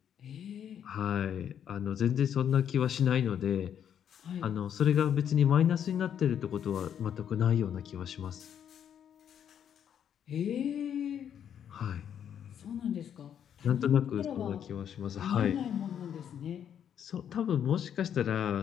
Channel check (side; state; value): right; quieter; 9.0 dB